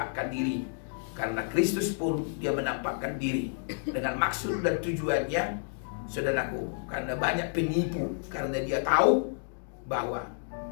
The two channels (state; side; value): silent; right; digital silence